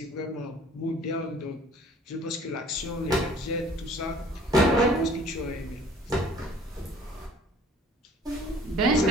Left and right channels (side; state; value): both; normal; correlation 0.53